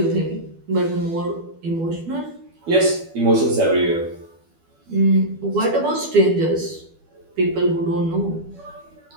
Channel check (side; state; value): left; late; 12 ms